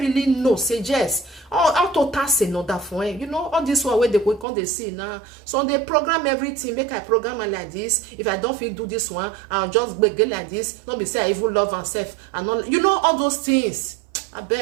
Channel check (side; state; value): left; drops out; at 4.5 s